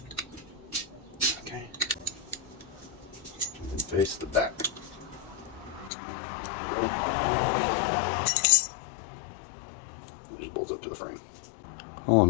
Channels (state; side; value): drops out; right; at 5.9 s